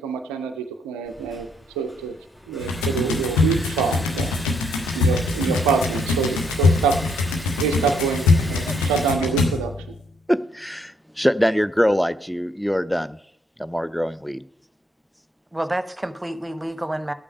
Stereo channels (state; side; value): normal; both; correlation 0.73